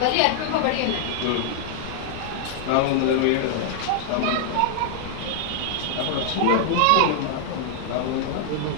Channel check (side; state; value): both; different; correlation -0.01